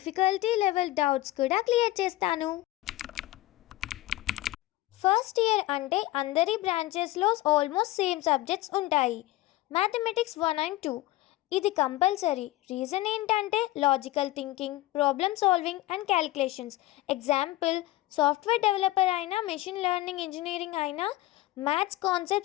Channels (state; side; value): quieter; right; 17.3 dB